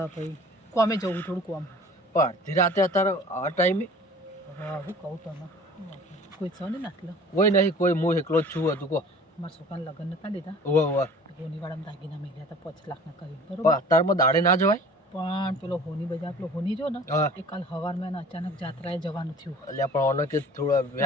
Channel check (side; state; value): both; normal; correlation 0.46